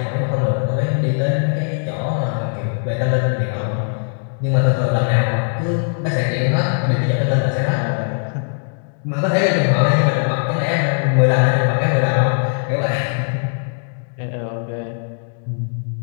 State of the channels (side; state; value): right; silent; digital silence